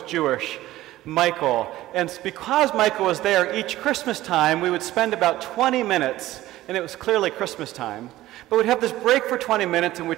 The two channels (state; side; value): quieter; left; 15.7 dB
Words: Jewish, Michael, and because Michael was there each Christmas time, we would spend about 20 minutes, and it was clearly Christmas time, but we'd have this break for 20 minutes and